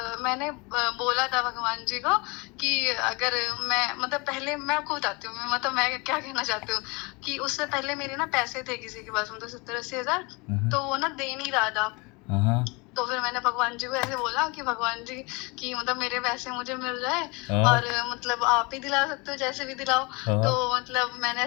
मैंने बोला था भगवान जी को कि अगर मैं मतलब पहले मैं आपको बताती हूँ, मतलब मैं क्या कहना चाहती हूँ कि उससे पहले मेरे ना पैसे थे किसी के पास, मतलब 70-80 हज़ार, हाँ, हाँ। तो वो ना दे नहीं रहा था। हाँ, हाँ। तो फिर मैंने भगवान जी को ऐसे बोला कि भगवान जी कि मतलब मेरे पैसे मुझे मिल जाए, हाँ, और मतलब आप ही दिला सकते हो, जैसे भी दिलाओ। तो हाँ, मतलब मैंने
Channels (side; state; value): right; quieter; 27.7 dB